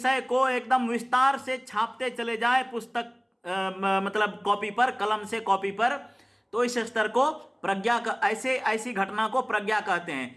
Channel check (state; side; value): identical; both; correlation 1.00